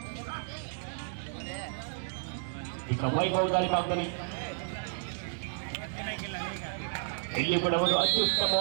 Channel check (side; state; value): left; silent; digital silence